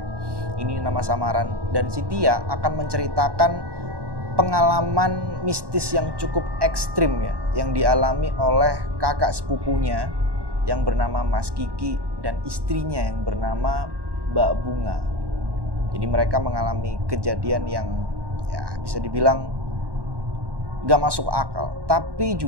ini nama samaran. Dan si Tia akan menceritakan pengalaman mistis yang cukup ekstrim ya, yang dialami oleh kakak sepupunya yang bernama Mas Kiki dan istrinya yang bernama Mbak Bunga. Jadi mereka mengalami kejadian yang ya bisa dibilang gak masuk akal, tapi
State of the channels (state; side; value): late; left; 1.1 ms